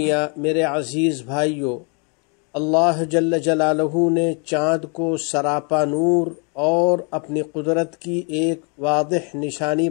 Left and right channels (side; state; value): right; quieter; 35.7 dB